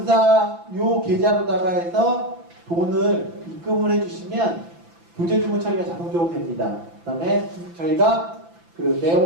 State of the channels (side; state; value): left; late; 5.9 ms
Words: 요 계좌로다가 해서 돈을 입금을 해주시면 교재 주문 처리가 자동적으로 됩니다. 그 다음에 저희가 그